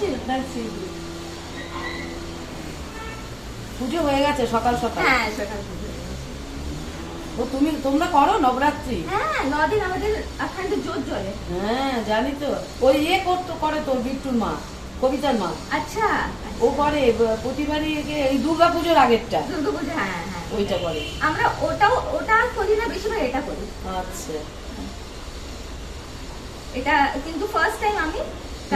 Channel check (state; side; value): identical; both; correlation 1.00